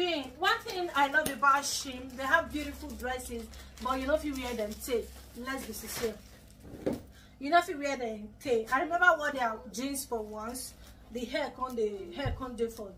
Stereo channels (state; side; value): identical; both; correlation 1.00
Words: One thing I love about Shein, they have beautiful dresses, but you know if you wear them, take. Let's be sincere. You know if you wear them, take. I remember what their jeans for once. The hair can't do for